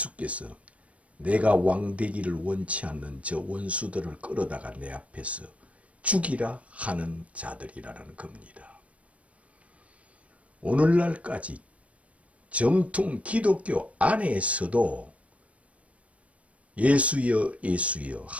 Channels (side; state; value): left; late; 0.065 ms